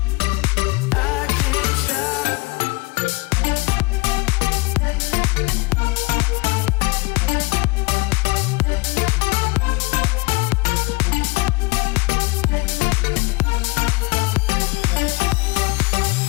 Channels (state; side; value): quieter; right; 25.0 dB